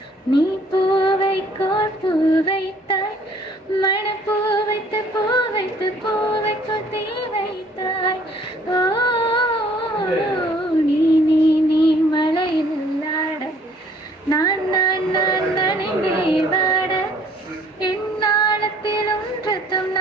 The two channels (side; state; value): both; normal; correlation 0.59